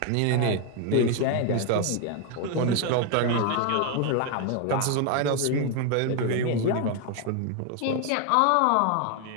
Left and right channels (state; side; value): different; both; correlation 0.01